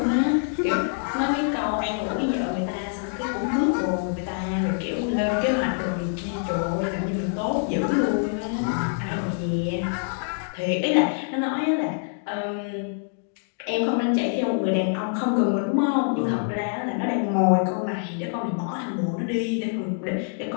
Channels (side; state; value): right; silent; digital silence